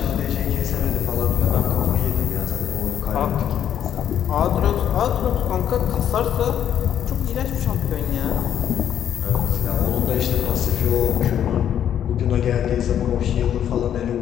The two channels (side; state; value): right; quieter; 9.8 dB